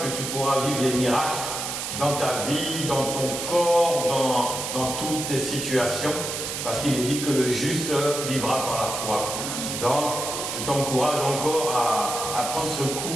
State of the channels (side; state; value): right; noise; hiss, 4 dB below the sound